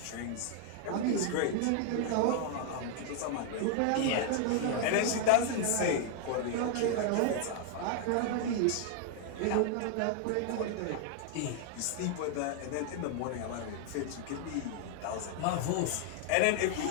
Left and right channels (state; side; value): different; both; correlation 0.00